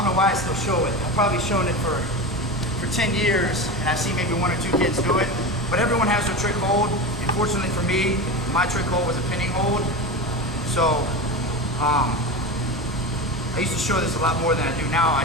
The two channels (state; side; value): normal; both; correlation 0.24